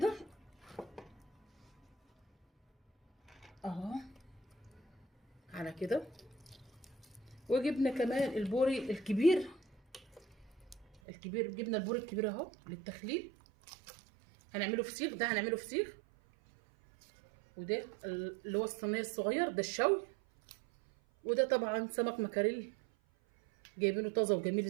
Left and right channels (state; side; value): drops out; left; at 11.0 s